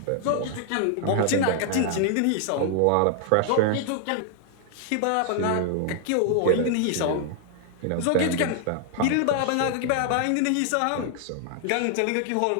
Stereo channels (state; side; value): different; both; correlation 0.00